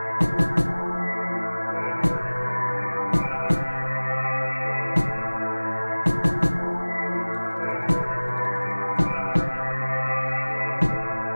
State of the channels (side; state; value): both; inverted; correlation -1.00